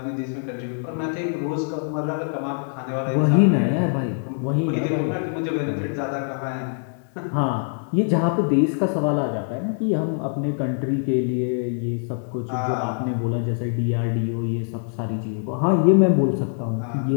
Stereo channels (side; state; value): right; silent; digital silence